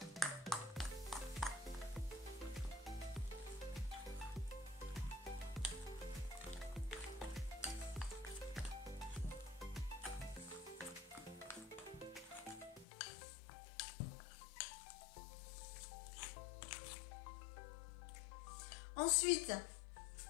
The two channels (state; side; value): drops out; right; at 12.9 s